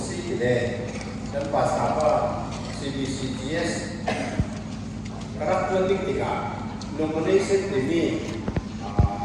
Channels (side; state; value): both; identical; correlation 1.00